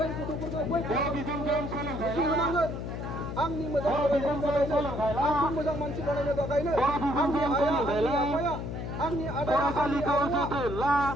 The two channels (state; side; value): noise; left; hum, 5 dB below the sound